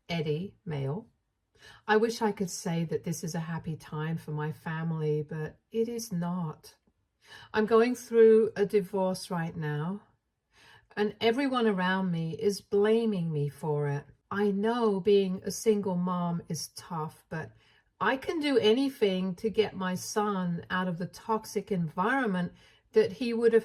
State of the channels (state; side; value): identical; both; correlation 1.00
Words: Eddie, male. I wish I could say that this is a happy time for my family, but it is not. I'm going through a divorce right now, and everyone around me is blaming me for it. I know being a single mom is tough, but I can do anything to get my son out of the toxic environment that he would have